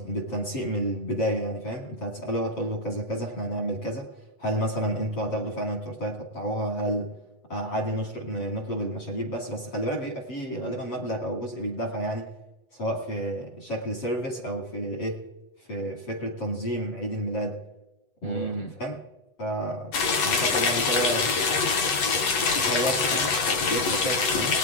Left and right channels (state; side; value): late; right; 8.1 ms